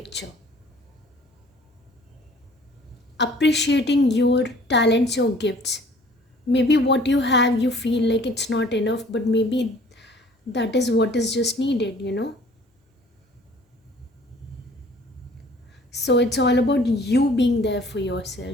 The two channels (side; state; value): both; normal; correlation 0.53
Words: appreciating your talents, your gifts. Maybe what you have, you feel like it's not enough, but maybe that is what is just needed. So it's all about you being there for